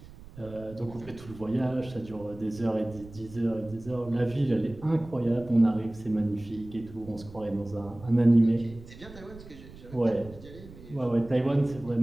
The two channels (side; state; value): right; noise; rumble, 18 dB below the sound